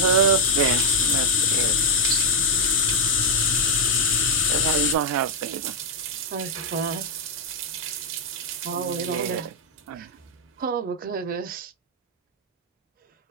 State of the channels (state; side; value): normal; both; correlation -0.02